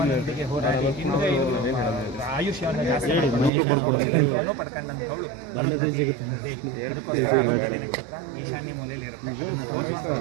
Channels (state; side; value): drops out; left; at 3.5 s